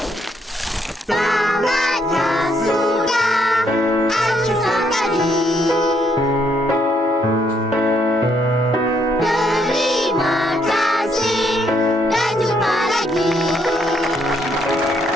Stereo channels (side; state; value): both; normal; correlation 0.72